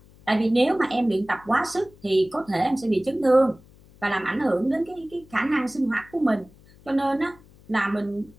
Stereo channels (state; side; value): noise; left; hum, 26 dB below the sound